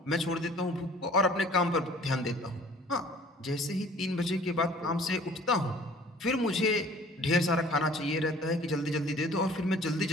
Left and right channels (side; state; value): both; normal; correlation 0.51